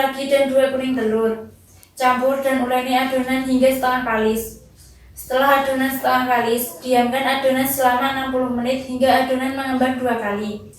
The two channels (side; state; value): both; identical; correlation 1.00